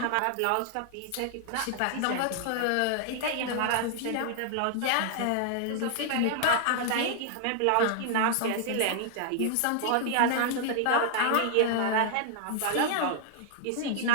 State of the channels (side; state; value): both; different; correlation 0.00